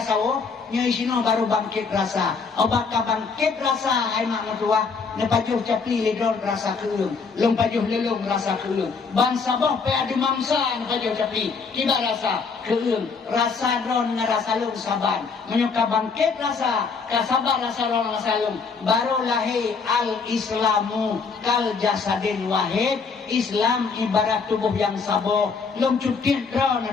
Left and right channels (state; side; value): quieter; right; 5.1 dB